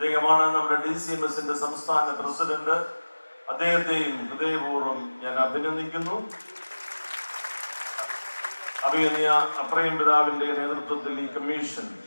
നമ്മുടെ DCMSന്റെ സംസ്ഥാന പ്രസിഡന്റ്. അദ്ദേഹത്തെയും ഹൃദയപൂർവ്വം ഞാൻ അഭിനന്ദിക്കുന്നു. അഭിനന്ദ അപ്രയം പിതാവിന്റെ നേതൃത്വത്തിൽ ഈ കമ്മീഷൻ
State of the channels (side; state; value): both; inverted; correlation -1.00